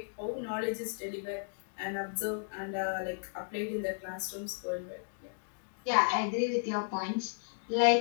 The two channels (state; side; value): silent; right; digital silence